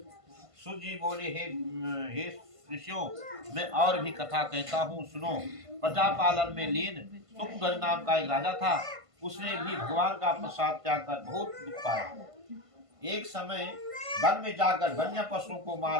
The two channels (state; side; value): late; left; 1.5 ms